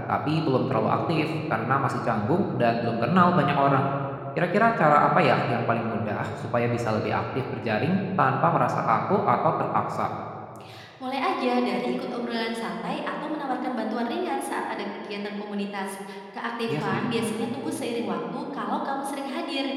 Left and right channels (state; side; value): identical; both; correlation 1.00